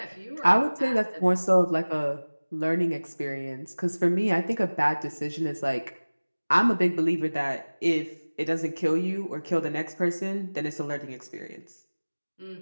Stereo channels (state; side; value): inverted; both; correlation -1.00